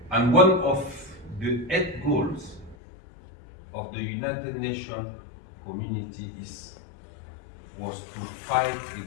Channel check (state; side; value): drops out; right; at 2.8 s